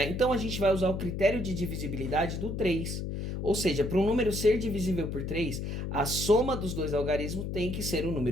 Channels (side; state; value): left; noise; hum, 4 dB below the sound